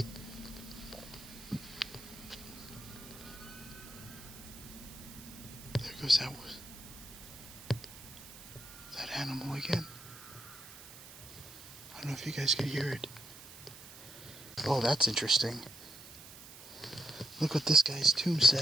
There goes that animal again. I don't know if you guys could hear it. Oh, that's interesting. Look what this guy's tomb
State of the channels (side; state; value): right; noise; hiss, 16 dB below the sound